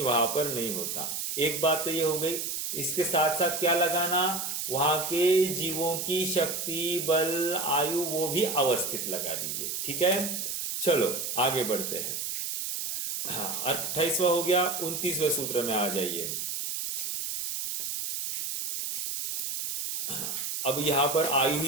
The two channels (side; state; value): right; noise; hiss, 3 dB below the sound